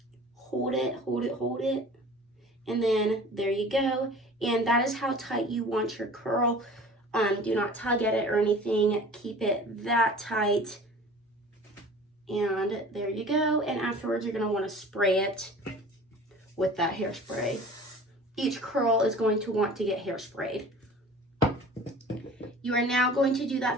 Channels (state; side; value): normal; both; correlation 0.43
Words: Hold it, hold it, hold it. And then there you go. And that is how tight you want your curl. Do not tug at it or anything. Keep it that tight. And there you go. And afterwards, you're going to want to spray it with that hairspray. Each curl is going to want to get hairsprayed. You are now going to do